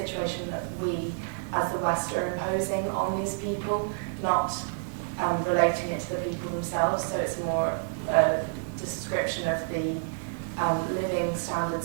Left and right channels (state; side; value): silent; left; 59 dB below the other